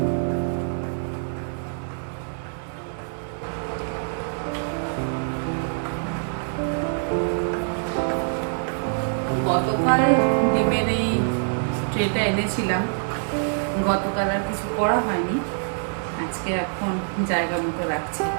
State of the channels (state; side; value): silent; left; 62 dB below the other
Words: গতকাল ডিমের এই ট্রেটা এনেছিলাম, গতকাল আর কিছু করা হয়নি, আজকে এখন জায়গা মতো রাখছি।